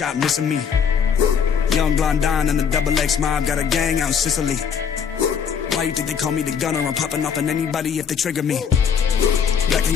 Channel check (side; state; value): right; quieter; 7.0 dB